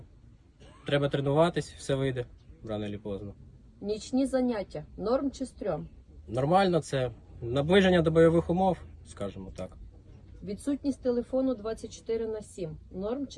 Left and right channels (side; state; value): both; identical; correlation 1.00